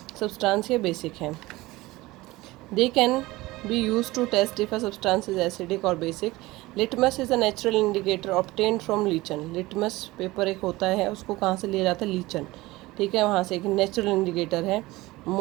substance या basic है। They can be used to test if a substance is acidic or basic. Litmus is a natural indicator obtained from lichen. Litmus paper एक होता है, उसको कहाँ से लिया जाता है? लीचन, ठीक है, वहाँ से एक नेचुरल इंडिकेटर है।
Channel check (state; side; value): quieter; left; 19.7 dB